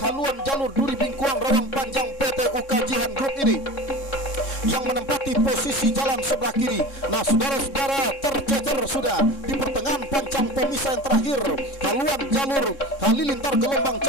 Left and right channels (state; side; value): late; right; 3.7 ms